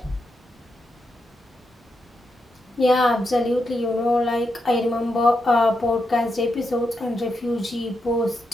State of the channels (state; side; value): normal; both; correlation 0.84